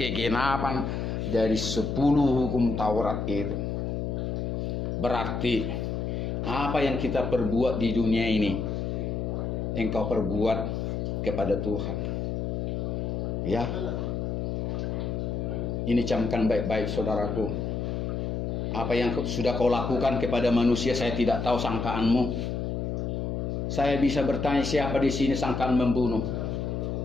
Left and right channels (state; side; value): noise; left; hum, 2 dB below the sound